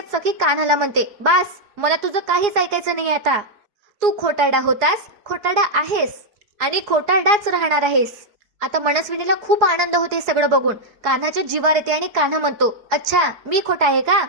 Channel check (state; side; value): late; left; 4.8 ms